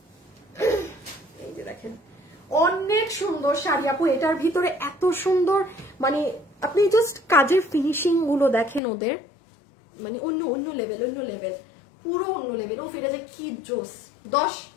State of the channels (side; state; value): right; drops out; at 8.8 s